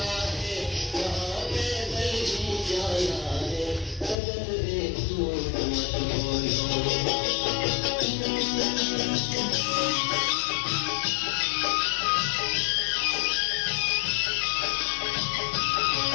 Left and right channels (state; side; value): drops out; right; at 4.2 s